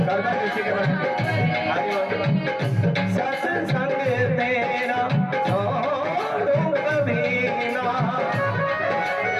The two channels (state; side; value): identical; both; correlation 1.00